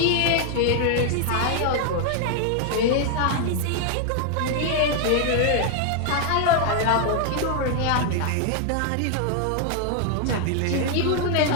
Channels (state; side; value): different; both; correlation 0.00